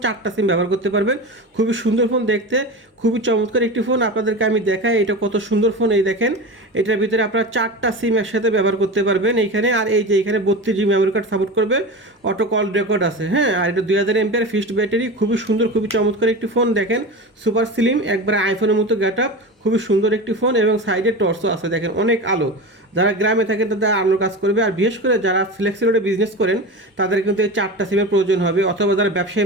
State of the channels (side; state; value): both; normal; correlation 0.27